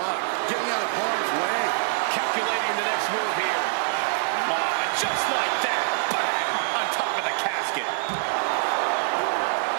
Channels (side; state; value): left; silent; digital silence